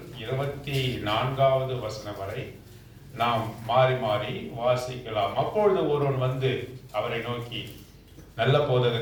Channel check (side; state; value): both; identical; correlation 1.00